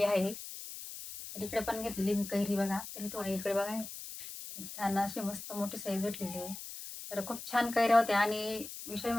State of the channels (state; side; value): noise; left; hiss, 10 dB below the sound